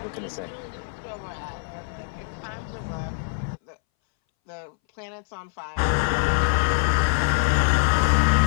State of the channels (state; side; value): silent; right; 62 dB below the other